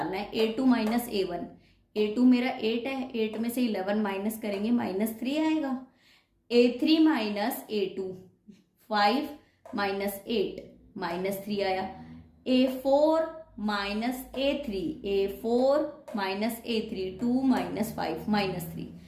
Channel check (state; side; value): identical; both; correlation 1.00